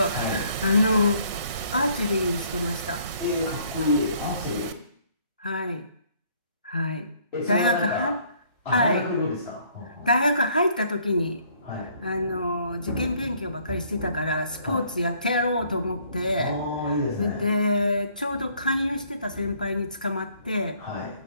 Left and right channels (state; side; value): inverted; both; correlation -0.63